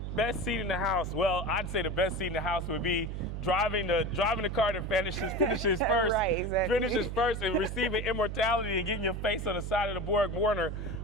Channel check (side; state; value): right; noise; hum, 5 dB below the sound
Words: Best seat in the house. Well, I'd say the best seat in the house would be driving the car that finishes first. Right, exactly. Finishes first and receiving immortality and getting your face on the side of the Borg Warner.